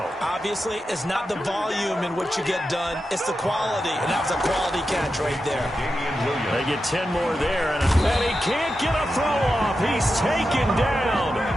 Obviously, it's not the volume in what you get done. It's the quality, and that was a quality catch right there. They get 10 more there, and he can't get a throw off. He's taken down.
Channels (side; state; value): both; normal; correlation 0.89